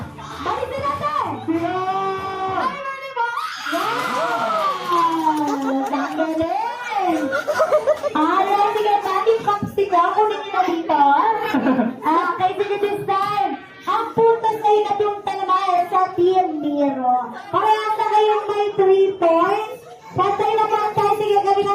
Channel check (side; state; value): both; identical; correlation 1.00